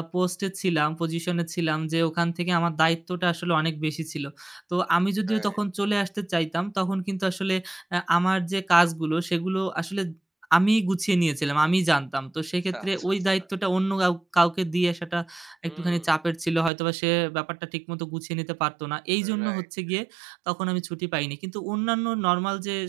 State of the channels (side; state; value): left; drops out; at 16.7 s